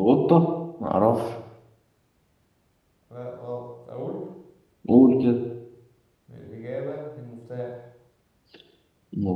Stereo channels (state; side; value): identical; both; correlation 1.00